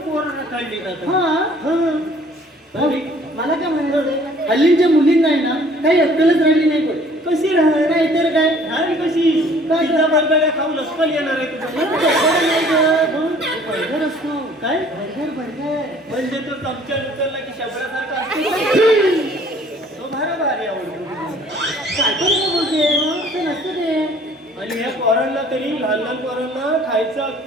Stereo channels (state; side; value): normal; both; correlation 0.55